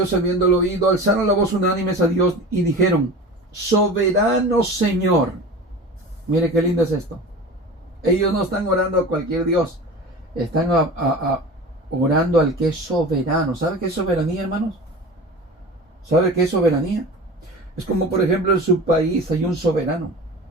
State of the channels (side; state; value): both; normal; correlation 0.34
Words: habiéndolo oído, alzaron la voz unánimes a Dios y dijeron, soberano Señor. Mire qué lindo es esto. Ellos no están orando a cualquier Dios, están orando al que es soberano. ¿Sabe qué es soberanía, hermanos? ¿Sabe qué es soberanía? Es como, por ejemplo, en su país hay un soberano.